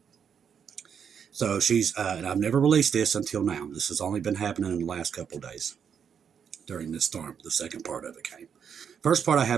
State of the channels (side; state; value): left; quieter; 7.4 dB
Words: So she's, and I've never released this until now. This has only been happening in the last couple of days during this storm. The second part of it came. First part I